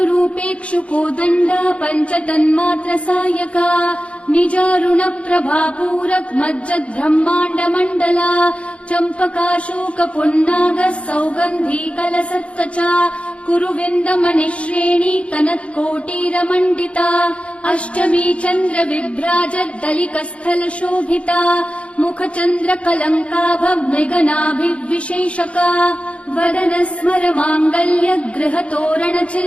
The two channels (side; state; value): right; late; 0.062 ms